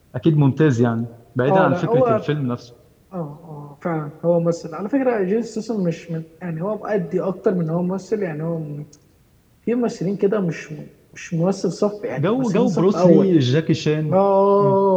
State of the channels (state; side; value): identical; both; correlation 1.00